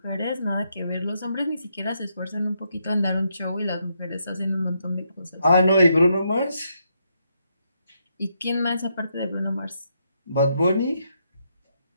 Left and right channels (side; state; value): both; inverted; correlation -0.79